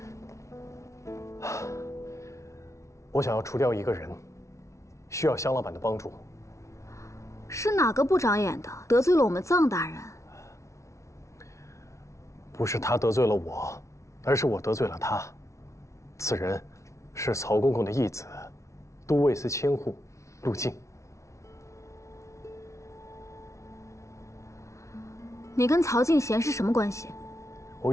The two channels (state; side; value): late; right; 0.14 ms